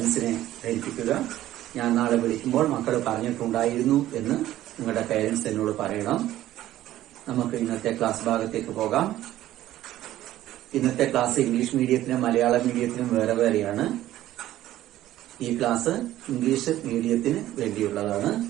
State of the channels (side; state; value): left; quieter; 14.0 dB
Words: ധരിപ്പിക്കുക. ഞാൻ നാളെ വിളിക്കുമ്പോൾ മക്കൾ പറഞ്ഞിട്ടുണ്ടായിരുന്നു എന്ന് നിങ്ങളുടെ പാരന്റ്സ് എന്നോട് പറയണം. നമുക്ക് ഇന്നത്തെ ക്ലാസ് ഭാഗത്തേക്ക് പോകാം. ഇന്നത്തെ ക്ലാസ് ഇംഗ്ലീഷ് മീഡിയത്തിനും മലയാളം മീഡിയത്തിനും വേറെ വേറെയാണ്. ഈ ക്ലാസ് ഇംഗ്ലീഷ് മീഡിയത്തിന് വേണ്ടിയുള്ളതാണ്.